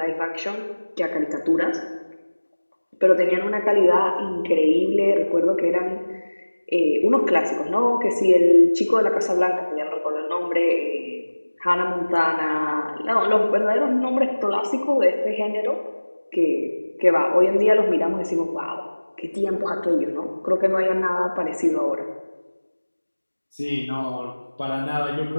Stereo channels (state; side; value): inverted; both; correlation -1.00